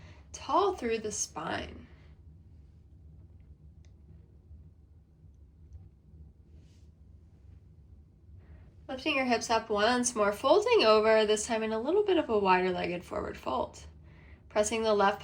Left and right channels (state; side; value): identical; both; correlation 1.00